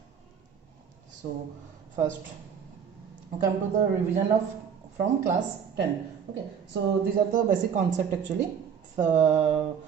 So first come to the revision of from class 10. Okay, so these are the basic concept actually. So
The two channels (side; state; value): left; quieter; 7.4 dB